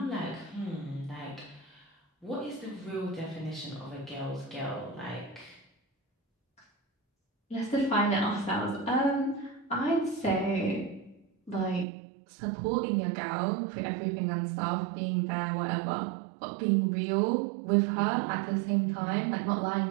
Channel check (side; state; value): left; drops out; at 11.9 s